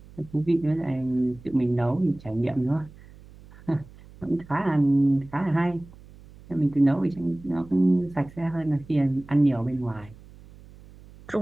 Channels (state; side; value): noise; right; hum, 21 dB below the sound